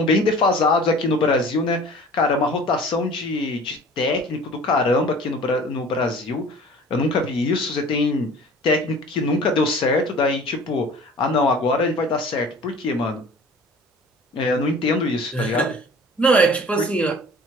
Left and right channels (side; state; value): both; normal; correlation 0.45